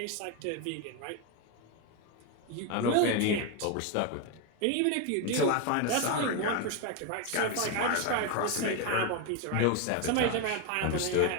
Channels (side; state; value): both; different; correlation 0.02